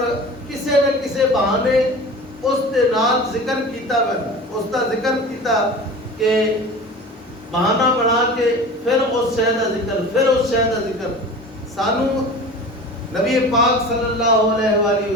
کسے نہ کسے بہانے اس دے نال ذکر کیتا ویندا, اس دا ذکر کیتا کہ بہانہ بنا کے پھر اس شے دا ذکر, پھر اس شے دا ذکر. سانو نبی پاک صلی اللہ علیہ وآلہ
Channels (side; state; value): both; normal; correlation 0.36